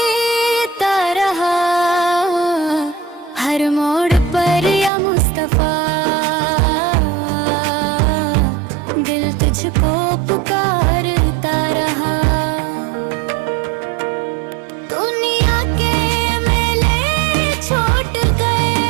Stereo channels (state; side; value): drops out; left; at 4.9 s